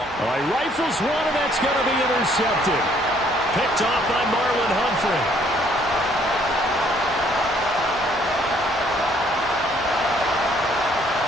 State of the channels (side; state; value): both; normal; correlation 0.64